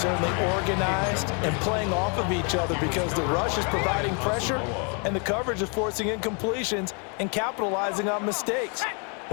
organized and playing off of each other, because the rush is providing pressure and the coverage is forcing incompletions and capitalizing on mistakes.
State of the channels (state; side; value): quieter; right; 37.3 dB